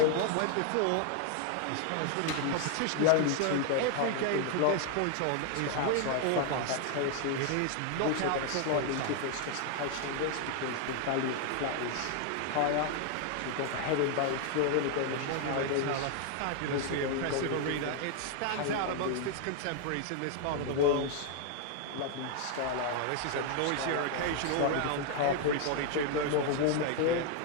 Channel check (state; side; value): different; both; correlation 0.00